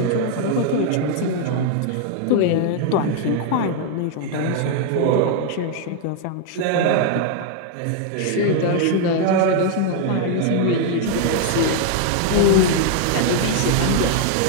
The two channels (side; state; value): both; different; correlation 0.00